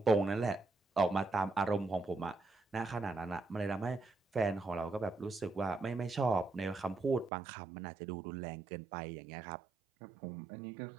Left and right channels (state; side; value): drops out; left; at 7.3 s